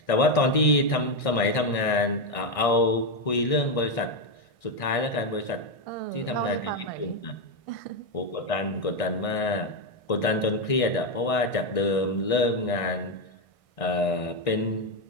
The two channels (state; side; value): late; right; 1.6 ms